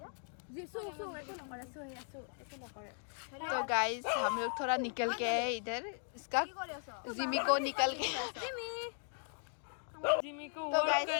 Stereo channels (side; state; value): right; silent; 52 dB below the other